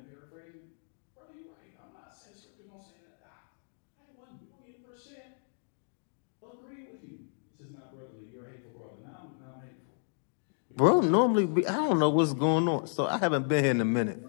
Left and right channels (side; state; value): right; silent; digital silence